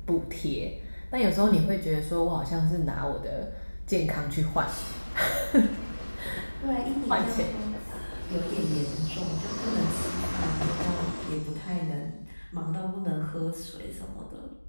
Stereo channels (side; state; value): both; inverted; correlation -1.00